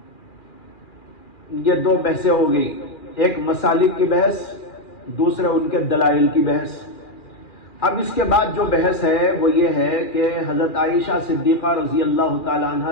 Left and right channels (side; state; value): right; late; 2.4 ms